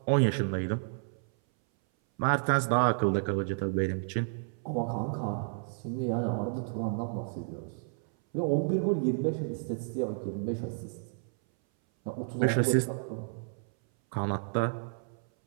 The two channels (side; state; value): left; silent; 57 dB below the other